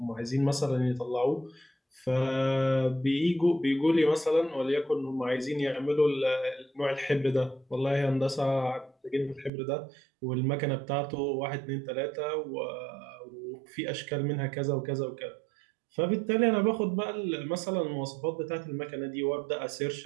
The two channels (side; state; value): left; drops out; at 9.5 s